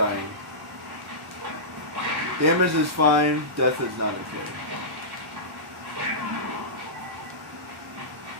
Damage is fine, death is not okay.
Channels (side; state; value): both; normal; correlation -0.17